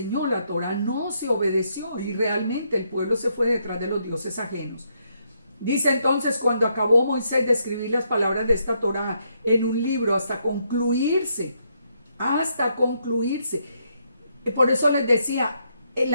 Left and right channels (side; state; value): both; inverted; correlation -0.76